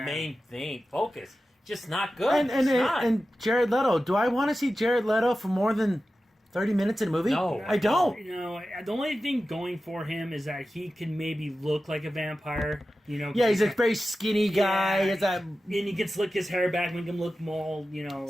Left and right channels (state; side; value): normal; both; correlation 0.93